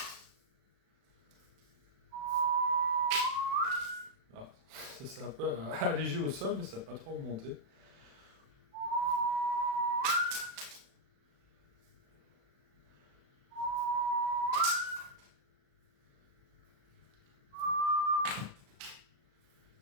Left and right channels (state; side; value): late; left; 36 ms